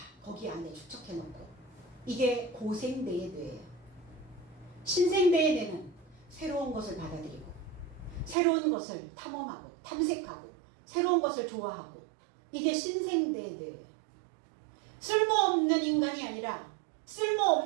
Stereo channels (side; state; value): left; drops out; at 8.3 s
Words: 거기 안에 축적해놓고 이게 고생대의 뇌예요. 신생대의 뇌는 새로운 것을 받아들이고 새로운 것을 탐험하고 탐색하고 새로운 것을 좋아하고 이게 신생대의 뇌예요. 쓸모없는 인간이 아니라